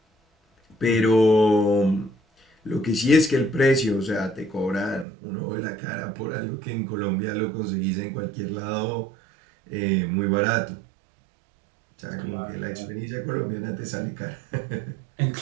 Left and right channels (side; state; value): left; drops out; at 5.1 s